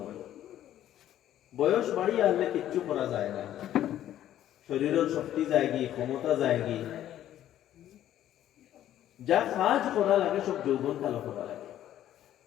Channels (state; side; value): quieter; right; 12.0 dB